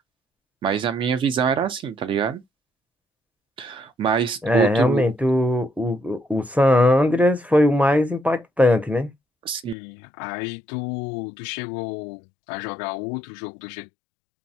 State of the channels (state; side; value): drops out; right; at 9.8 s